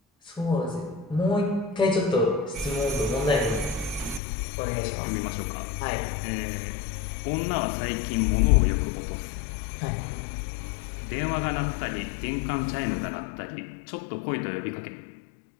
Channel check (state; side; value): drops out; right; at 4.2 s